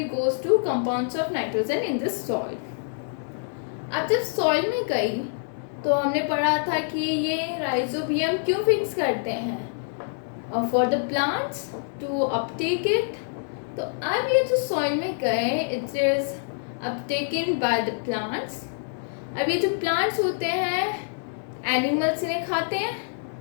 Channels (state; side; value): silent; right; 61 dB below the other